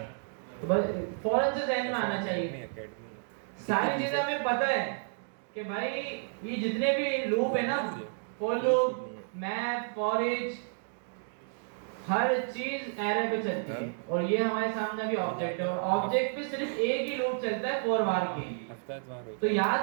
तो बस फौरन से ध्यान में आना चाहिए। सारी चीजें हमें पता है कि भाई ये जितने भी लूप है ना, for loop, map, for each, हर चीज एरे पे चलती है। और ये हमारे सामने अभी ऑब्जेक्ट है, और ऑब्जेक्ट पे सिर्फ एक ही लूप चलता है, फॉर बार की। तो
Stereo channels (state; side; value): silent; left; digital silence